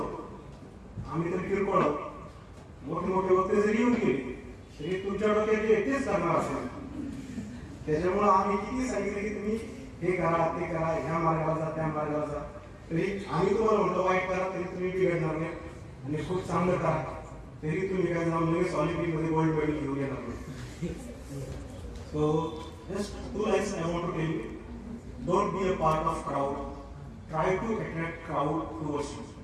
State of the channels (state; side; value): identical; both; correlation 1.00